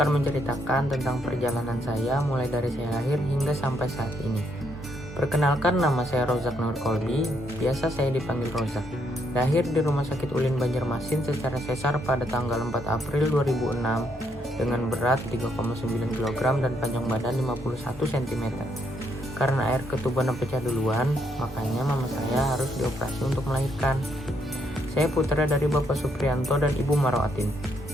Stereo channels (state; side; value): normal; both; correlation 0.75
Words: menceritakan tentang perjalanan saya mulai dari saya lahir hingga sampai saat ini. Perkenalkan, nama saya Rozak Nur Kolbi, biasa saya dipanggil Rozak. Lahir di Rumah Sakit Ulin Banjarmasin secara sesar pada tanggal 4 April 2006 dengan berat 3,9 kg dan panjang badan 51 cm. Karena air ketubannya pecah duluan, makanya mama saya harus dioperasi untuk melahirkan. Saya putra dari Bapak Suprianto dan Ibu Marwatin.